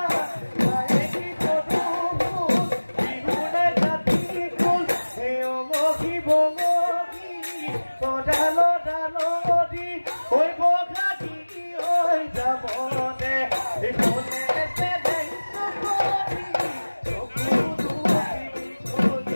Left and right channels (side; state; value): both; inverted; correlation -1.00